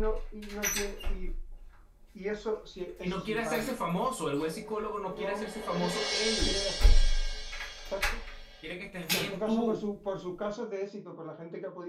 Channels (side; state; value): both; identical; correlation 1.00